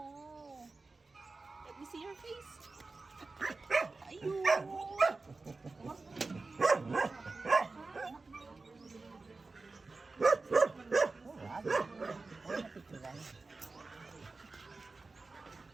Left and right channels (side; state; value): left; quieter; 3.7 dB